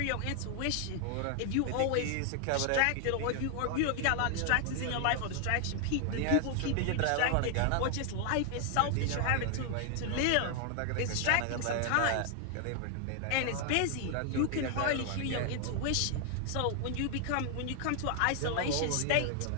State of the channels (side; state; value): both; different; correlation 0.00